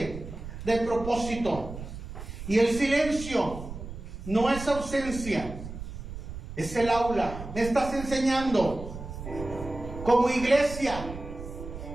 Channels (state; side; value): noise; right; rumble, 10 dB below the sound